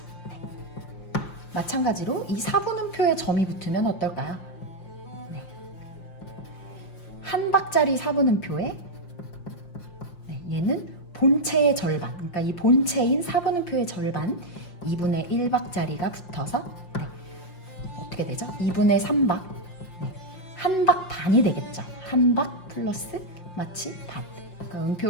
마찬가지로 이 4분음표에 점이 붙으면 어떨까요? 한 박자리 4분음표에 얘는 본체의 절반, 그러니까 이 본체인 4분음표의 절반 2분의 1박자리가 붙어서 어떻게 되죠? 2분의 3박, 한 박 반이 되겠죠. 한 박 플러스 마치 반. 그러니까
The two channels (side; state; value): right; late; 5.7 ms